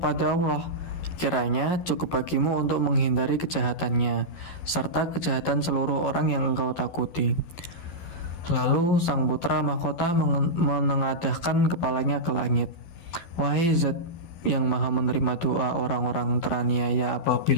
Allah. Kiranya cukup bagimu untuk menghindari kejahatannya, serta kejahatan seluruh orang yang engkau takuti." Lalu sang putra mahkota menengadahkan kepalanya ke langit. "Wahai Zat yang maha menerima doa orang-orang teraniaya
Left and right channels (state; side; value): late; right; 12 ms